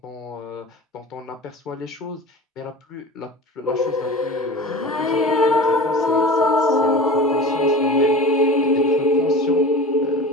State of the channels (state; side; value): normal; both; correlation 0.35